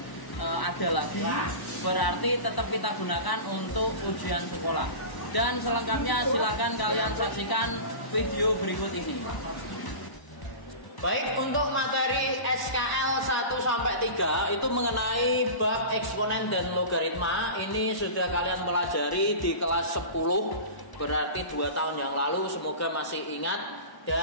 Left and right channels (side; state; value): right; late; 1.0 ms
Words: ada lagi, berarti tetap kita gunakan untuk ujian sekolah. Dan selengkapnya silakan kalian saksikan video berikut ini. Baik, untuk materi SKL 1-3 itu mengenai bab eksponen dan logaritma. Ini sudah kalian pelajari di kelas 10, berarti 2 tahun yang lalu. Semoga masih ingat